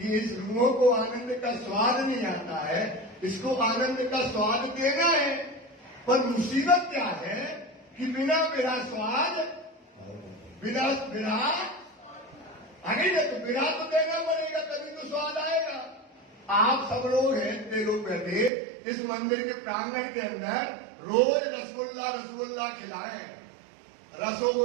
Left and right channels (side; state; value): left; drops out; at 18.5 s